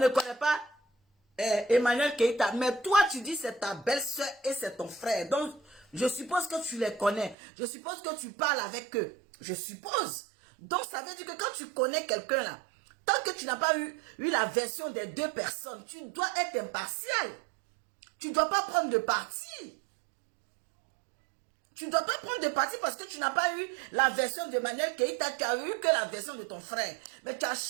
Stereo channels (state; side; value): drops out; left; at 7.4 s